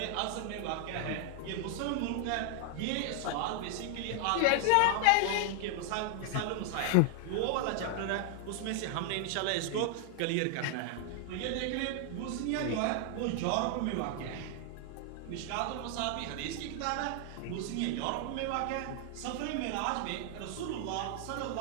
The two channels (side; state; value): both; different; correlation 0.00